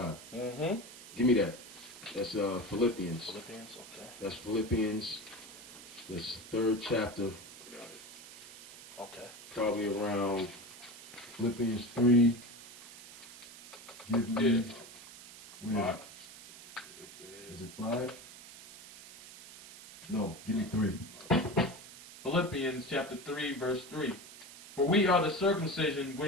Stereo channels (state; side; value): noise; right; hiss, 16 dB below the sound